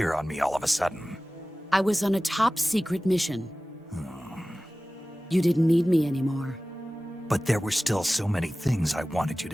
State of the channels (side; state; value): both; normal; correlation 0.97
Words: on me all of a sudden? I was on a top-secret mission. You didn't need me anymore. But there were still so many things I wanted you